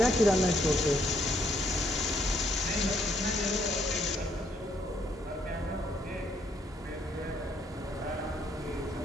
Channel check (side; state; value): both; normal; correlation 0.70